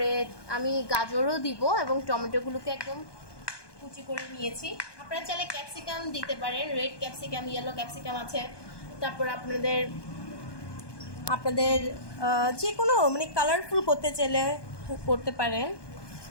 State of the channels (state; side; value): late; right; 1.2 ms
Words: আমি গাজরও দিব এবং টমেটোগুলোকে একদম কুচি করে নিয়েছি। আপনারা চাইলে ক্যাপসিকাম দিতে পারেন, রেড ক্যাপসিকাম, ইয়েলো ক্যাপসিকাম আছে। তারপর আপনাদের যে কোনো মানে কালারফুল করতে চাইলে করতে পারেন।